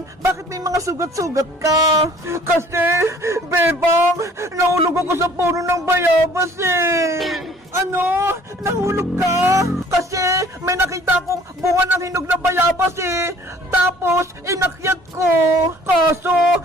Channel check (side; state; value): both; normal; correlation 0.54